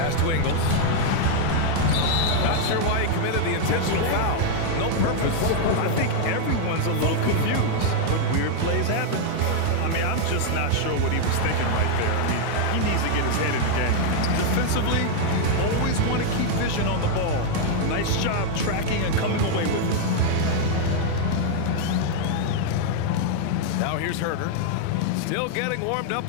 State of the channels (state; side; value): different; both; correlation 0.00